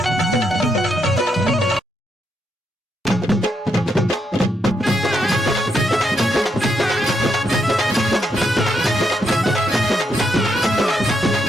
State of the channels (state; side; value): normal; both; correlation 0.79